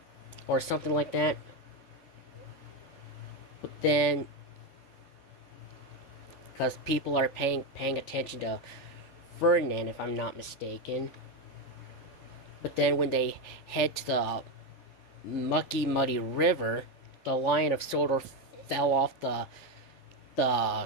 or something like that. But then, because people are paying attention to Ferdinand, if I'm not mistaken. But then when they head to the mucky, muddy river, the Lion of Sodor fell off the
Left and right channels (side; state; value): right; late; 3.4 ms